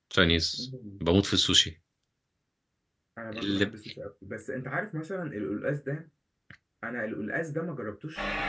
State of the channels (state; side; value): identical; both; correlation 1.00